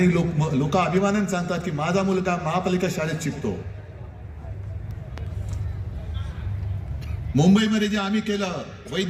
लोक अभिमानाने सांगतात की माझा मुलगा महापालिका शाळेत शिकतो. मुंबईमध्ये जे आम्ही केलं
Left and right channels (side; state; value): both; identical; correlation 1.00